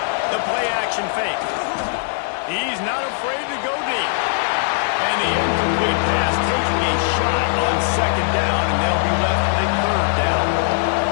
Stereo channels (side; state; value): right; silent; 66 dB below the other